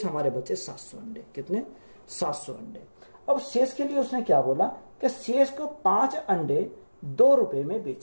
हमारे बचे 700 अंडे। कितने? 700 अंडे। अब शेष के लिए उसने क्या बोला कि शेष को 5 अंडे 2 रुपए में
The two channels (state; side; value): inverted; both; correlation -1.00